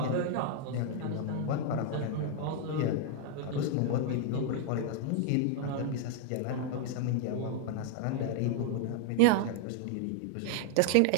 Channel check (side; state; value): both; different; correlation 0.00